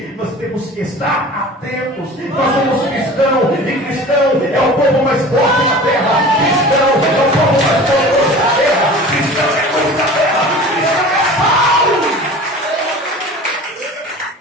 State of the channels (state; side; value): normal; both; correlation 0.40